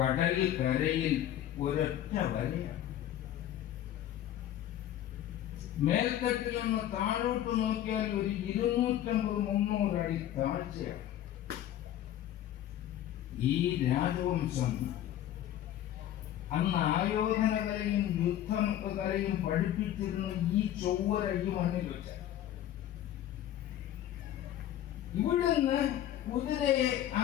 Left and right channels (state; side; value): quieter; right; 11.9 dB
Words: കരയിൽ ഒരൊറ്റ വരയാണ്. മേൽത്തട്ടിൽ നിന്ന് താഴോട്ട് നോക്കിയാൽ ഒരു 250-300 അടി താഴ്ചയാണ്. ഈ രാജവംശം അന്ന് ആയോധന കലയും യുദ്ധകലയും പഠിപ്പിച്ചിരുന്ന ഈ ചൊവ്വര ഈ മണ്ണിൽ വെച്ച ഇവിടുന്ന് കുതിരയെ ആ